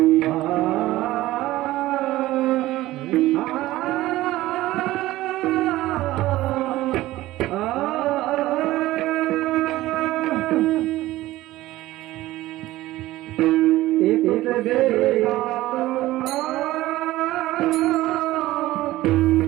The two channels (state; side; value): quieter; left; 16.7 dB